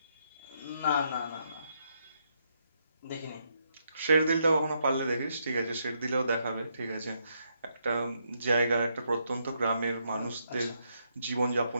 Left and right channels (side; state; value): both; inverted; correlation -0.77